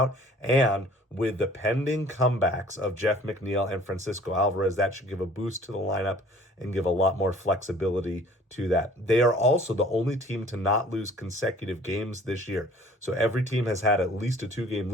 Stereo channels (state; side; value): normal; both; correlation 0.51